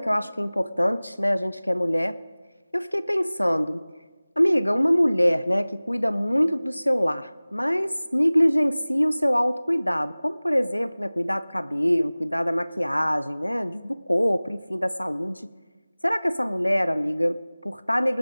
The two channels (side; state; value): both; inverted; correlation -0.99